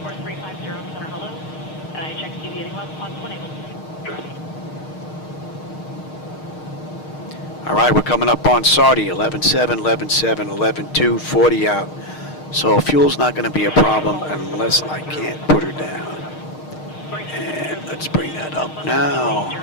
center, hello. I checked deviating left, on 1 able. All right, we're coming up on Sardi, 11.7, 11.7, 11.2, 40 out. So fuel's not going to be a problem unless I can't put her down. And let's bring that up now.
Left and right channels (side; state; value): right; late; 6.5 ms